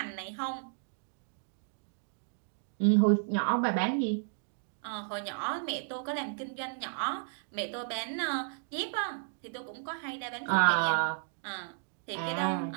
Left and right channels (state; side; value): silent; left; digital silence